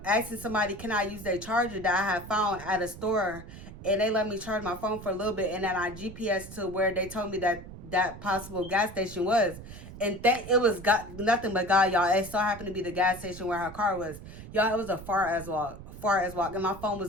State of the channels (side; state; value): right; noise; rumble, 14 dB below the sound